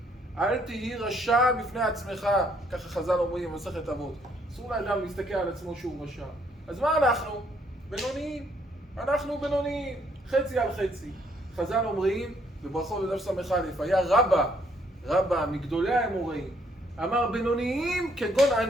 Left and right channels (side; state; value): both; normal; correlation 0.68